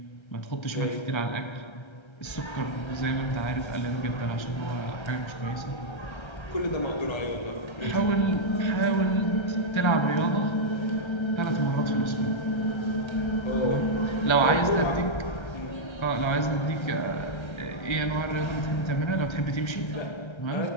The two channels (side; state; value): right; late; 1.3 ms